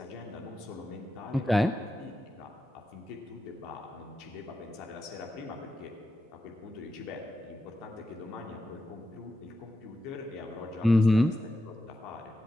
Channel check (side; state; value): both; normal; correlation 0.88